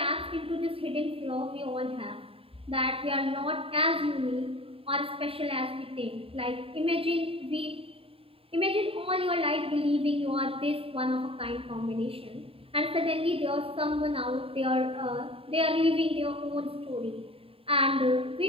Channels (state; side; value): late; left; 0.27 ms